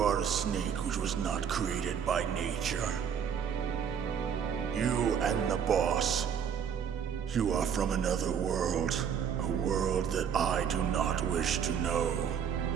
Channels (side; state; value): left; quieter; 7.8 dB